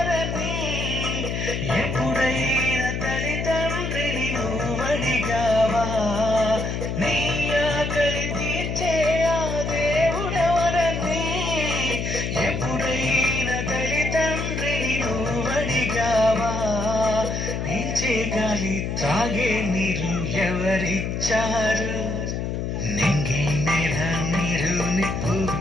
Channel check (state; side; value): noise; left; hum, 2 dB below the sound